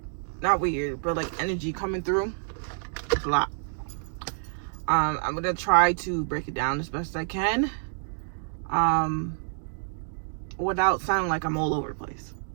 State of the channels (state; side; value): silent; left; digital silence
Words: not weird, but like energy coming through. It's a lot. I'm gonna try to break it down as best I can, without sounding like I'm all over the place.